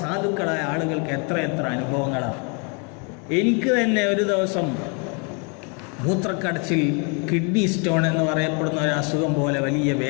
സാധുക്കളായ ആളുകൾക്ക് എത്ര അനുഭവങ്ങളാണ്. എനിക്ക് തന്നെ ഒരു ദിവസം മൂത്രക്കടച്ചിൽ, കിഡ്നി സ്റ്റോൺ എന്ന് പറയപ്പെടുന്ന ഒരു അസുഖം പോലെ വലിയ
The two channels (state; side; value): quieter; right; 35.1 dB